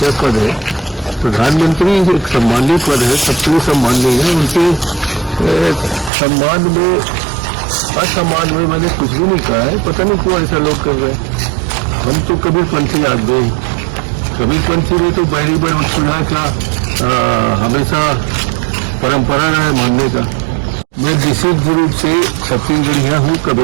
है। प्रधानमंत्री एक सम्मानित पद है, सबके सम्माननीय है। उनके सम्मान में असम्मान में मैंने कुछ भी नहीं कहा है। पता नहीं क्यों ऐसा लोग कर रहे हैं। हम तो कबीरपंथी आदमी, कबीरपंथी में तो बैरी बड़ सुना का हमेशा परंपरा रहा है मानने का। मैं विशेष रूप से छत्तीसगढ़िया हूँ,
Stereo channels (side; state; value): left; drops out; at 6.1 s